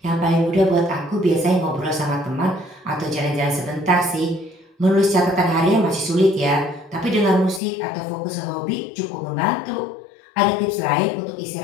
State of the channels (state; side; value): drops out; right; at 7.6 s